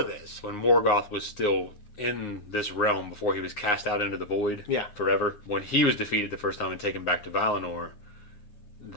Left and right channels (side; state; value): right; late; 9.6 ms